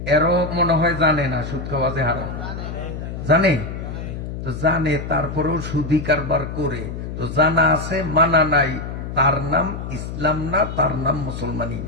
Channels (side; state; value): left; noise; hum, 7 dB below the sound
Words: এরও মনে হয় জানে না সুদ খাওয়া যে হারাম। জানে তো, জানে তারপরেও সুদি কারবার করে। তো জানা আছে মানা নাই, তার নাম ইসলাম না, তার নাম মুসলমানি